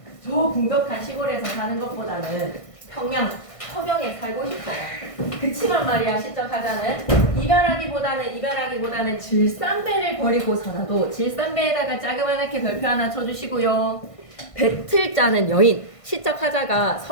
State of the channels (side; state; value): right; late; 1.5 ms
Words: 저 궁벽한 시골에서 사는 것보다는 평양 서경에 살고 싶어요. 그치만 말이야 시적 하자는 이별하기보다는 질산배를 버리고서라도 질산배에다가 자그마하게 별표 하나 쳐주시고요. 배틀 짜는 여인 시적 하자가